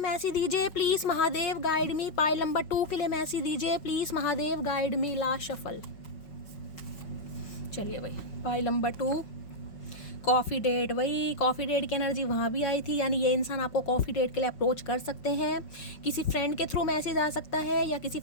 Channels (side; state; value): right; late; 5.4 ms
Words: दीजिए please Mahadev, guide me. Pile number 2 के लिए मैसेज दीजिए please Mahadev, guide me. Last shuffle. चलिए भाई पाइल नंबर 2, कॉफ़ी डेट, वही कॉफ़ी डेट की एनर्जी वहाँ भी आई थी, यानी ये इंसान आपको कॉफ़ी डेट के लिए अप्रोच कर सकते हैं। किसी फ्रेंड के थ्रू मैसेज आ सकता है, या किसी